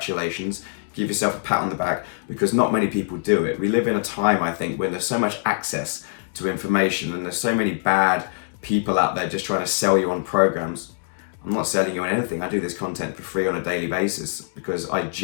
Give yourself a pat on the back because not many people do it. We live in a time, I think, when there's so much access to information and there's so many bad people out there just trying to sell you on programs. I'm not selling you on anything. I do this content for free on a daily basis because I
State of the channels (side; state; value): right; silent; digital silence